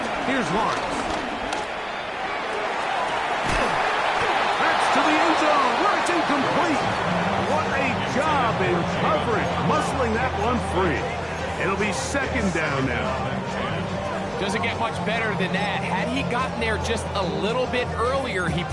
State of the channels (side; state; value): both; identical; correlation 1.00